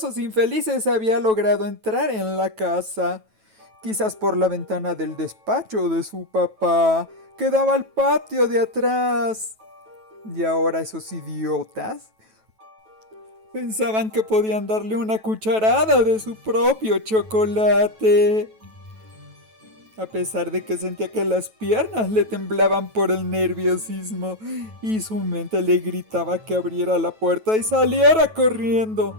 infelices había logrado entrar en la casa, quizás por la ventana del despacho de su papá, que daba al patio de atrás. Y ahora esos idiotas pensaban que podían darle una cucharada de su propio chocolate. A pesar de que sentía que las piernas le temblaban por el nerviosismo y su mente le gritaba que abriera la puerta y saliera corriendo.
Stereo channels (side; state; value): left; late; 9.2 ms